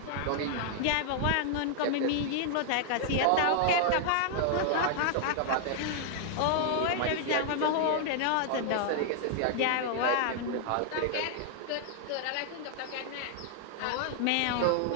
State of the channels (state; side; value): different; both; correlation -0.01